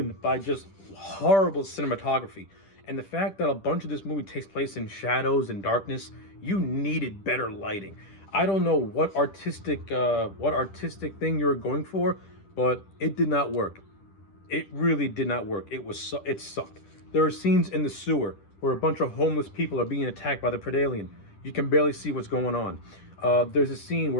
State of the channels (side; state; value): right; late; 10 ms